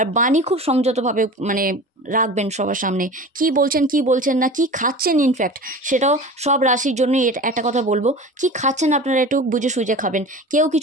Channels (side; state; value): both; normal; correlation 0.36